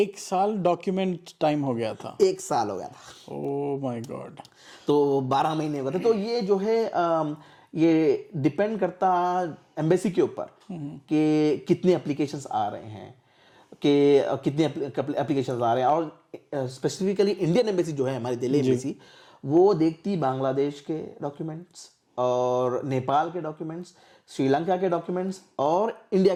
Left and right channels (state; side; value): identical; both; correlation 1.00